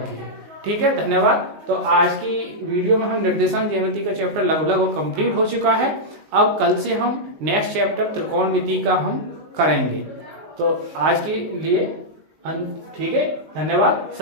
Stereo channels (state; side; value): late; left; 19 ms